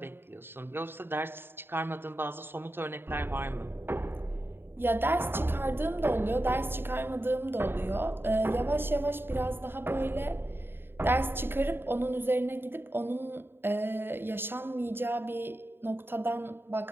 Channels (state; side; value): late; left; 0.11 ms